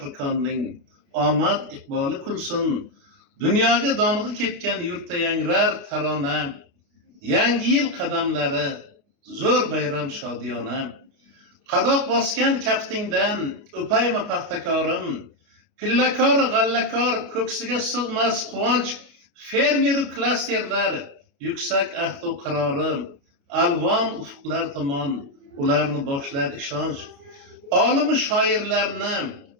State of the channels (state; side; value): late; left; 29 ms